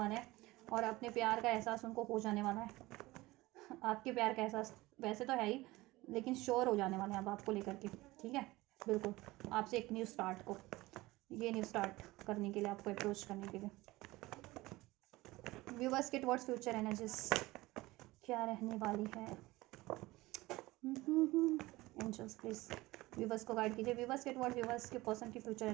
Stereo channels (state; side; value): quieter; left; 19.8 dB